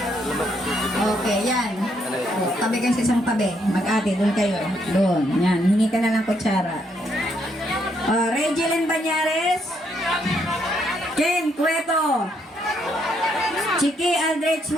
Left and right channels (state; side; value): normal; both; correlation 0.74